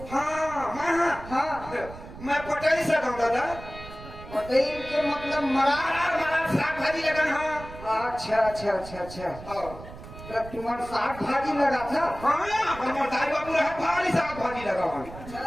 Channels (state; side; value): noise; right; rumble, 14 dB below the sound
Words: हाँ हाँ हाँ मैं पटाई सकूं दादा पटेल के मतलब मरार। मरार साग भाजी लगन हाँ अच्छा अच्छा अच्छा अच्छा तो तुम्हारा साग भाजी लगा था। हाँ हमारे दाई बाबू रहा भारी साग भाजी लगा